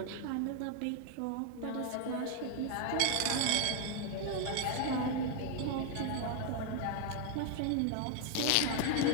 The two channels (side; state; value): both; different; correlation 0.00